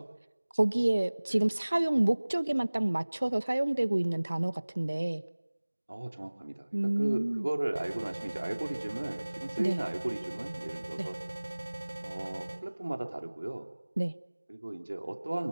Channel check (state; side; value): inverted; both; correlation -1.00